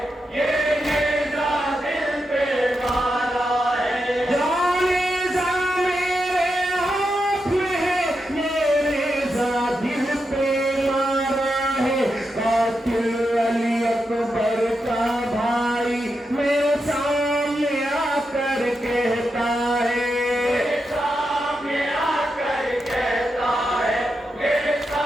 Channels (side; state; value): both; normal; correlation 0.86